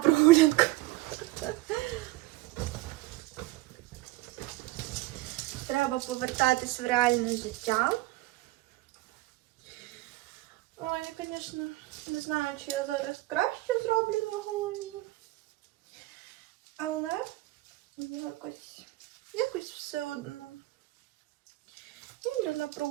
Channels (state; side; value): quieter; left; 19.2 dB